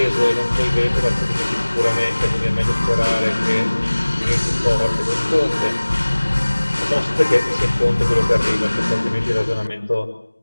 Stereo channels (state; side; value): inverted; both; correlation -1.00